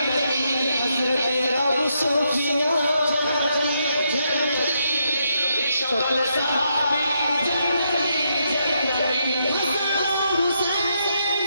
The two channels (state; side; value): inverted; both; correlation -0.78